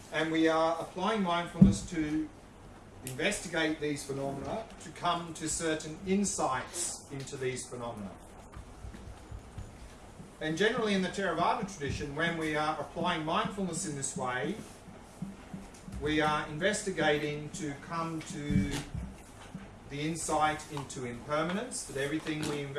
And we are applying mindfulness to investigate these phenomena, to come to certain insights into these phenomena. And generally in the Theravada tradition, when we are applying mindfulness in this way, we are investigating to come to the insight into impermanence, that everything we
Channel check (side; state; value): both; identical; correlation 1.00